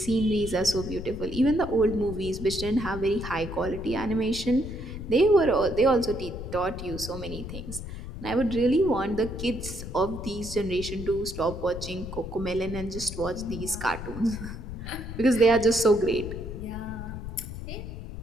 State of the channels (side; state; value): left; noise; rumble, 9 dB below the sound